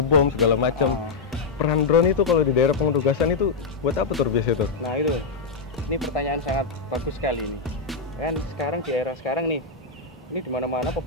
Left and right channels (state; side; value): quieter; right; 4.5 dB